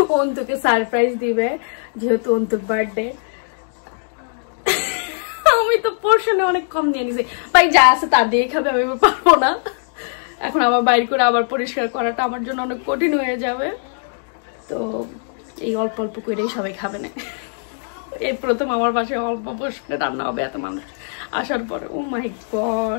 অন্তুকে সারপ্রাইজ দিবে যেহেতু অন্তুর বার্থডে। আমি তো পোর্শনে অনেক কম নিয়ে নিছি, ভাই যা আছে তা দিয়ে খাবে, আমি পারবো না। এখন আবার বাইর করে আবার পরিষ্কার করাটা আমার জন্য অনেক কঠিন হয়ে যাবে। তো এই অল্প অল্প করেই সবাই খাবে না। এই প্রথম আমার বাসায় অল্প পোর্শনে রান্না হবে এত মানুষ আসার পরে। ও মাই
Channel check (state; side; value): silent; right; digital silence